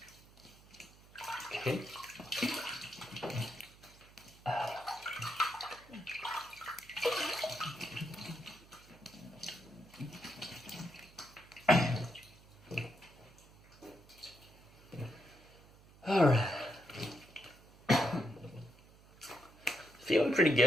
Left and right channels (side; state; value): right; noise; hum, 24 dB below the sound